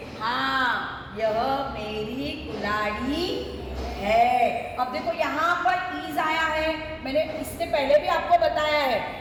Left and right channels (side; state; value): both; identical; correlation 1.00